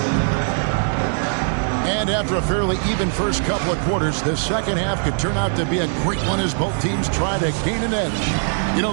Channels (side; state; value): left; silent; digital silence